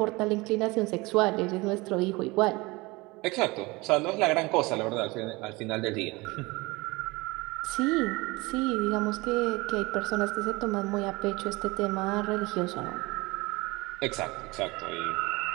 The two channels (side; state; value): left; quieter; 23.5 dB